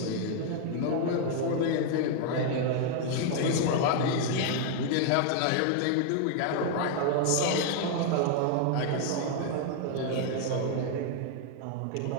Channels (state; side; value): different; both; correlation 0.00